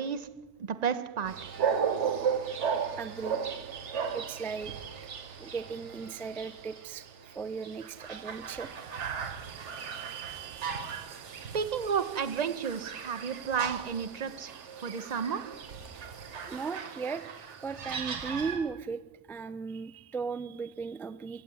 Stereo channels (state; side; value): quieter; left; 6.2 dB